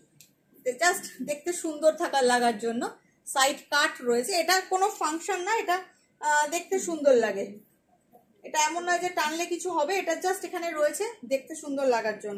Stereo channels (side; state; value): both; identical; correlation 1.00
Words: জাস্ট দেখতে সুন্দর থাকার লাগার জন্য সাইড কাট রয়েছে। এটা কোনো ফাংশন না, এটা দেখতে সুন্দর লাগে। এটা এমন নয় যে টানলে কিছু হবে, এটা জাস্ট এখানে রয়েছে দেখতে সুন্দর লাগার